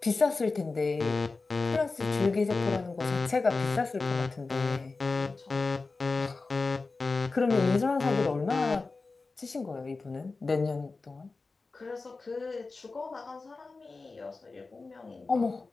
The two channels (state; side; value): quieter; right; 3.9 dB